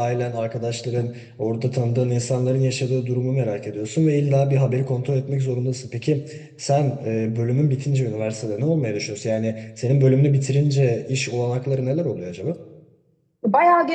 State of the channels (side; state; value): both; identical; correlation 1.00